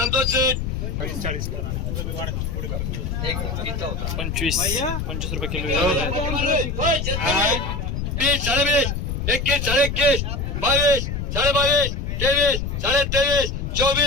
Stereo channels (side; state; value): left; noise; rumble, 3 dB below the sound